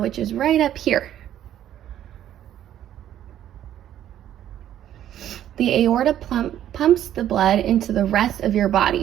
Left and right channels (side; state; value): left; quieter; 11.4 dB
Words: is right up here. The aorta pumps the blood into the rest of your